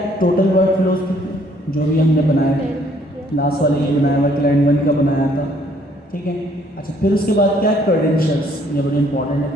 टोटल वर्क फ्लो जो भी हमने बनाया, लास्ट वाले ये बनाया हुआ क्लाइंट 1 का बनाया था, ठीक है। अच्छा, फिर उसके बाद क्या है, क्रेडेंशियल्स, ये बड़ी इंपॉर्टेंट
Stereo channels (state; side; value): normal; both; correlation 0.63